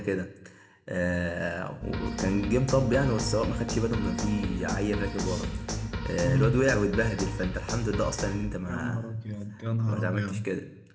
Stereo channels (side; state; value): both; identical; correlation 1.00